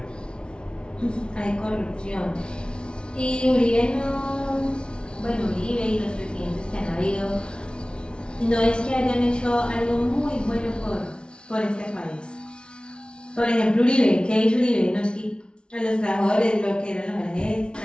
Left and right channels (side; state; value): right; late; 0.056 ms